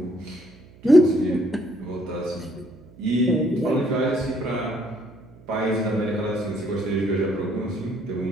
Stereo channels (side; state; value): right; noise; hum, 23 dB below the sound